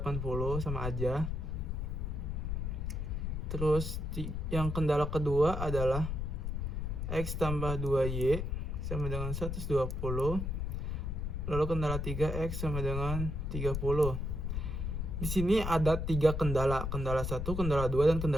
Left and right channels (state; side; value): noise; left; rumble, 2 dB below the sound